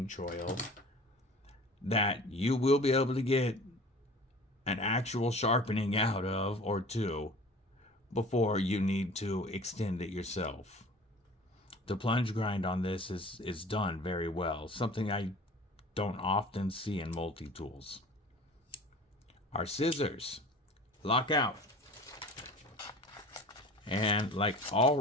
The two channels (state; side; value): normal; both; correlation 0.43